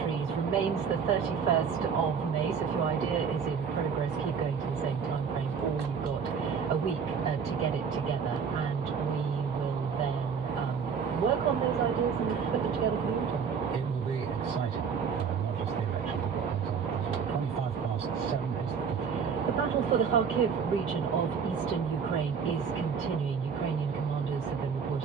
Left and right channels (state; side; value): quieter; left; 6.4 dB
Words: remains the 31st of May. So if your idea is in progress, keep going to the same time frame, or you've got a week to get it together, and we will then work on those ideas and put them together for the autumn. It will be exciting, not just the election, but what comes on. 7:25 is the The battle for the Kharkiv region of eastern Ukraine is continuing. Ukrainian commanders have been